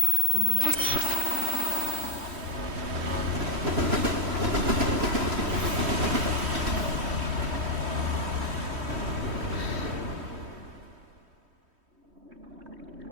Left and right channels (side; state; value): left; late; 3.2 ms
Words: 今後の